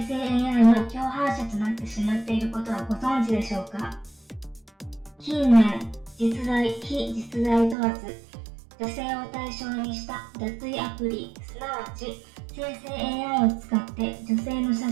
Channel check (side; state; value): left; drops out; at 7.8 s